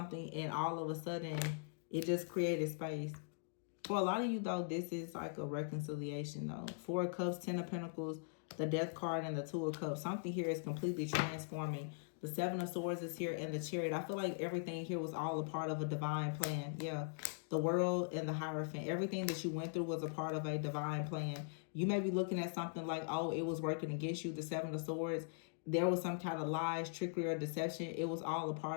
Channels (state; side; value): silent; right; digital silence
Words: and all of a sudden, it just created space. For a lot of you, though, this is like a reconciliation, though. 4 of Cups, 10 of Pentacles, the Death card, and the 2 of Cups. Something here is completely transforming. The 7 of Swords is here, and the Chariot. I feel like everything here was all a part of a divine plan. Yeah, the World and the Hierophant. Everything that you went through was a part of a divine plan. You may be looking at something like, oh, it was working against you, the 7 of Swords. There was some kind of lies, trickery, or deception. It was all a